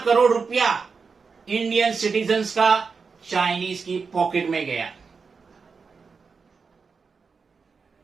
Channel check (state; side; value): quieter; left; 5.1 dB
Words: करोड़ रुपया इंडियन सिटीजन्स का चाइनीज की पॉकेट में गया।